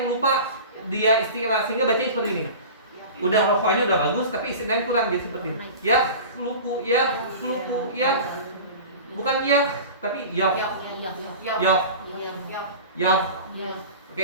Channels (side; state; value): both; inverted; correlation -0.35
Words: lupa dia istilah, sehingga bacanya seperti ini. Udah rokhawahnya udah bagus, tapi istilahnya kurang, dia seperti ini. Yakhluqu, bukan tapi Oke